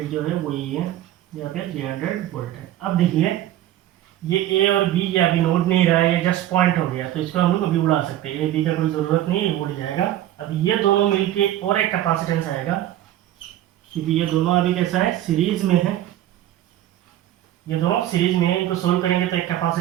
जो है वो ये है, यहाँ पे 300 वोल्ट है। अब देखिए ये ए और बी ये अभी नोट नहीं रहा है, ये जस्ट पॉइंट हो गया, तो इसको हम लोग अभी उड़ा सकते हैं, ए बी का कोई ज़रूरत नहीं है, उड़ जाएगा। अब ये दोनों मिलके और एक कैपेसिटेंस आएगा, क्योंकि ये दोनों अभी कैसा है, सीरीज में है, ये दोनों सीरीज में है। इनको सोल्व करेंगे तो एक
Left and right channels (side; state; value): left; quieter; 13.1 dB